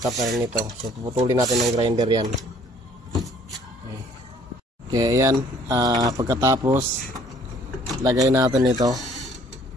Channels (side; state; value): both; normal; correlation 0.58